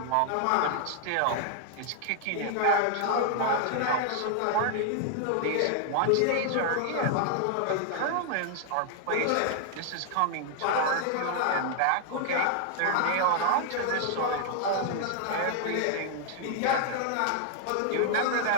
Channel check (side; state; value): both; different; correlation 0.00